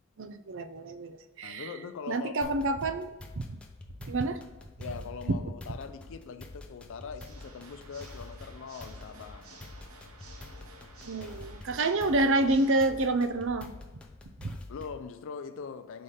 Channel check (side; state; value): both; normal; correlation 0.14